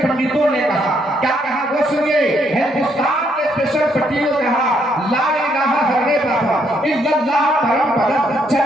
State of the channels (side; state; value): both; normal; correlation 0.72